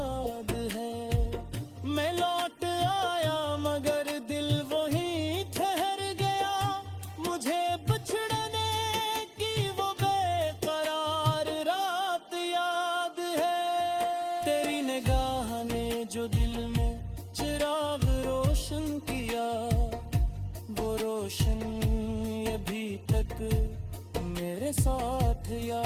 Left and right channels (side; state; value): both; identical; correlation 1.00